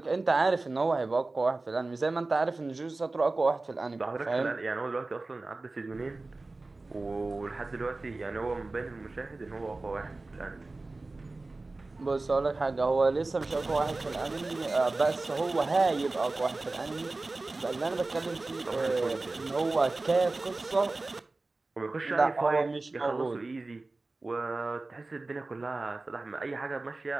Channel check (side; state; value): left; quieter; 3.3 dB